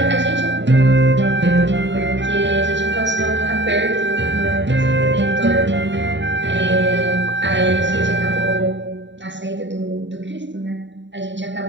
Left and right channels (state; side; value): late; left; 0.53 ms